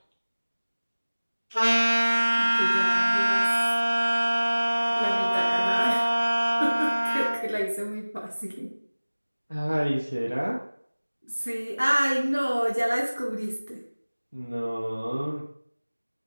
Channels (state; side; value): inverted; both; correlation -1.00